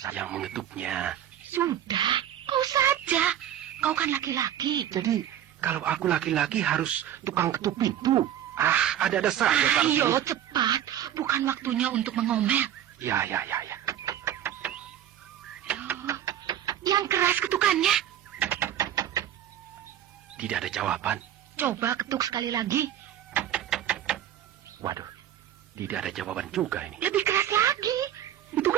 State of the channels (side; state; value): left; quieter; 10.9 dB